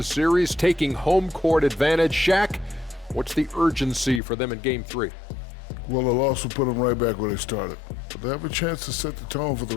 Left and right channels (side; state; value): right; drops out; at 4.2 s